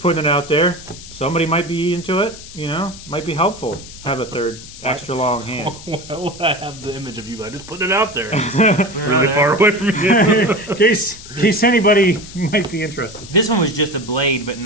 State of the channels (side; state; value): left; noise; hiss, 16 dB below the sound